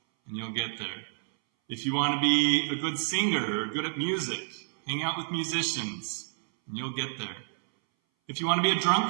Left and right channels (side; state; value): left; silent; 58 dB below the other